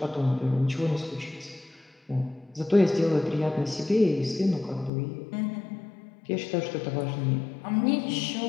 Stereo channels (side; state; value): right; drops out; at 4.9 s